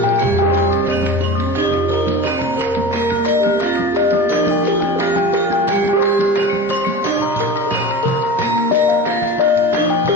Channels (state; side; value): normal; both; correlation 0.33